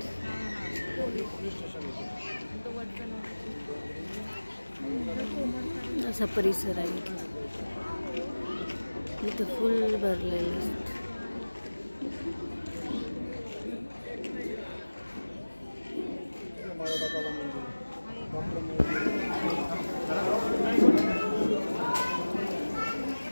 असा परिसर आहे. इथं फुल भरलेलं असतं.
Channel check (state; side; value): inverted; both; correlation -1.00